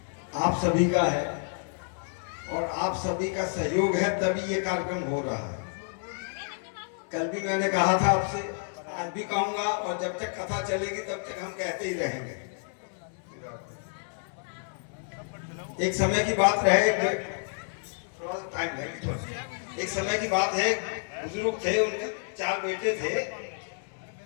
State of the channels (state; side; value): silent; right; 58 dB below the other